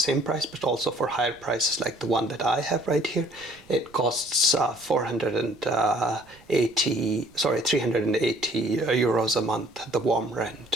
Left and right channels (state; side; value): noise; right; rumble, 27 dB below the sound